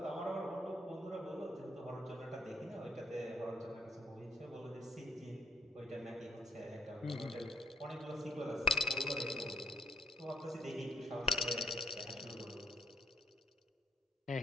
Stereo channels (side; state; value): both; normal; correlation 0.69